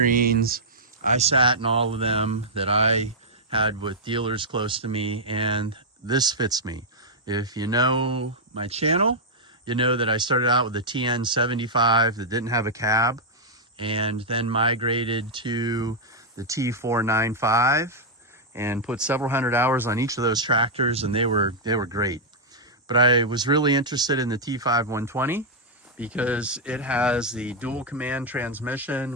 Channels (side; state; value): both; normal; correlation -0.06